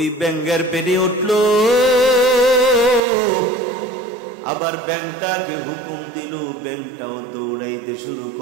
ব্যাঙের পেটে উঠল। আবার ব্যাঙটাকে হুকুম দিল, ব্যাঙটাও দৌড়াইতে শুরু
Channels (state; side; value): drops out; left; at 3.0 s